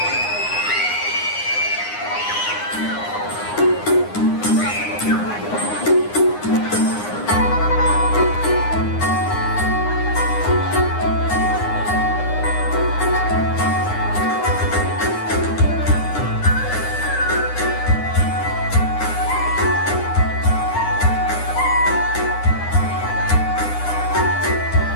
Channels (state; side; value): late; right; 9.7 ms